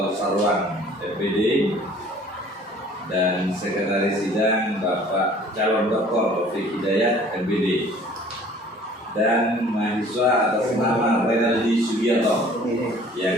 Sarwan, FPD, dan sekretaris sidang Bapak calon Dr. Taufik Hidayat, MPD, dan mahasiswa atas nama Renaldi Sugiarto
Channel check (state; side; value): normal; both; correlation 0.52